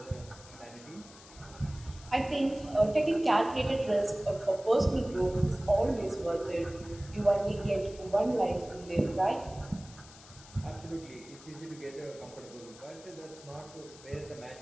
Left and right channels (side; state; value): left; noise; hiss, 20 dB below the sound